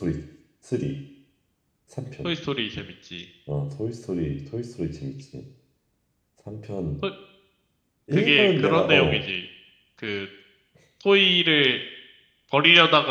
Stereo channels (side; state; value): both; identical; correlation 1.00